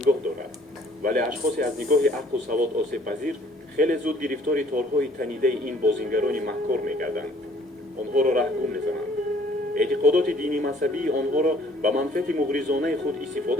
дорад, вале ашхосе аз нигоҳи ақлу савод осебпазир хеле зуд гирифтори торҳои танидаи ин бозингарони маҳкор мегарданд. онҳоро раҳгум мезананд. эътиқодоти дини мазҳабии онҳоро ба манфиати муғризонаи худ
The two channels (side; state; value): both; normal; correlation 0.58